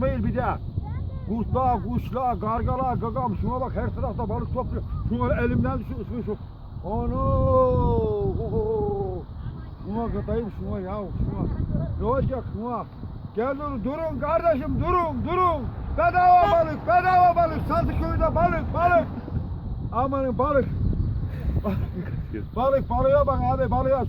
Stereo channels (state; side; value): identical; both; correlation 1.00